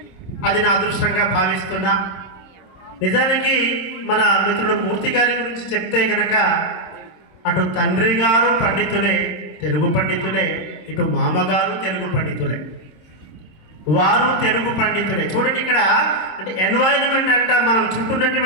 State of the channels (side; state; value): right; late; 26 ms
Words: అది నా అదృష్టంగా భావిస్తున్నా. నిజానికి మన మిత్రుడు మూర్తి గారి గురించి చెప్తే గనక అటు తండ్రి గారు పండితులే, తెలుగు పండితులే, ఇటు మామగారు తెలుగు పండితులే, వారు తెలుగు పండితులే. చూడండి ఇక్కడ అంటే ఎన్వైరన్మెంట్ అంట మనం